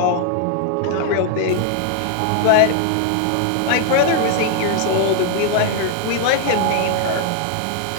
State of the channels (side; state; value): both; different; correlation 0.00